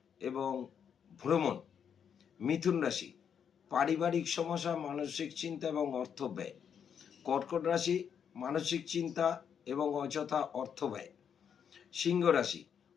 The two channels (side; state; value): right; quieter; 7.8 dB